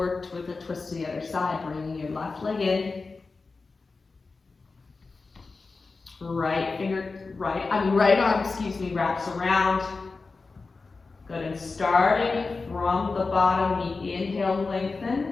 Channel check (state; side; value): quieter; right; 4.1 dB